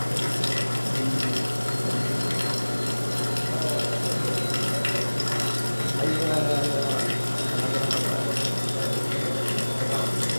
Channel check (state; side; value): inverted; both; correlation -1.00